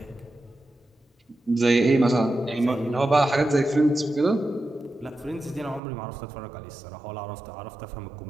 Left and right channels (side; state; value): left; drops out; at 5.8 s